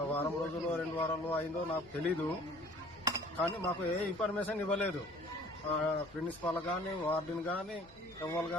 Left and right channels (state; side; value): noise; left; rumble, 24 dB below the sound